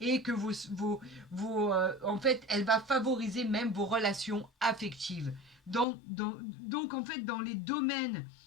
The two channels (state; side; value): drops out; right; at 5.9 s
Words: que en fait, elle va favoriser même vos relations affectives. Donc, en fait, dans les domaines